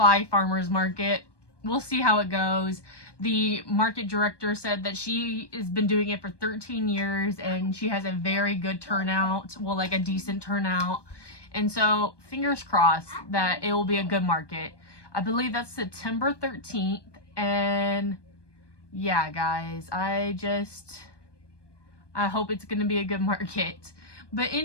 Farmers Market. We'll see how it goes. The market director said that she has been doing it for 13 years and she has a very good turnout, well, like a decent turnout. And so, fingers crossed that it will be a good market. I believe that's September 13th. And yeah, guys, I hope it's going to be a good market. But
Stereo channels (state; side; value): late; right; 1.2 ms